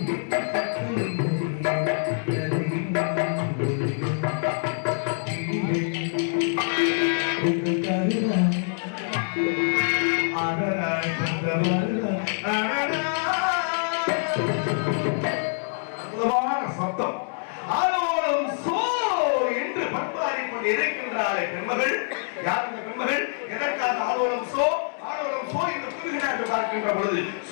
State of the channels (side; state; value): right; silent; digital silence